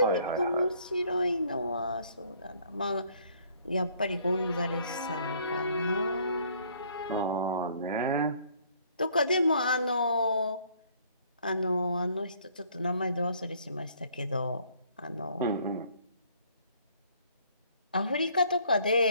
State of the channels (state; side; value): inverted; both; correlation -0.61